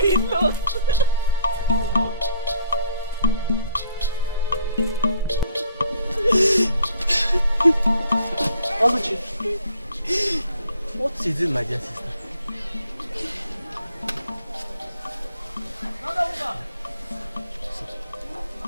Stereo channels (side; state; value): both; inverted; correlation -0.59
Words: lost. Oluchi, what is it, my dear sister?